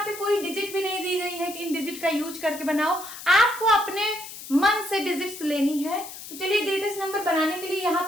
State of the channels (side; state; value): left; noise; hiss, 12 dB below the sound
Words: पे कोई डिजिट भी नहीं दी गई है कि इन डिजिट का यूज करके बनाओ, आपको अपने मन से डिजिट्स लेनी है। तो चलिए ग्रेटेस्ट नंबर बनाने के लिए यहाँ